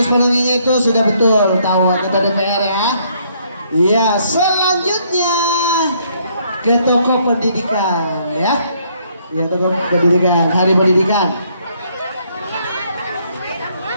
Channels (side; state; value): both; inverted; correlation -0.68